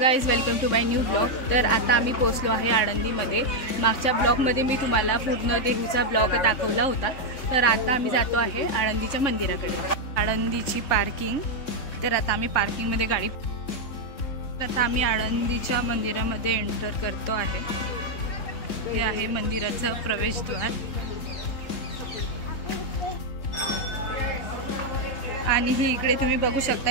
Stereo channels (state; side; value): late; right; 3.6 ms